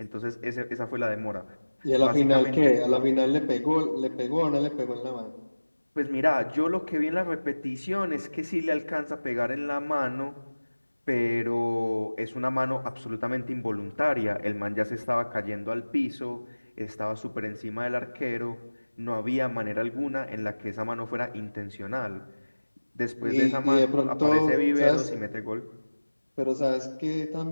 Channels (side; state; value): both; inverted; correlation -1.00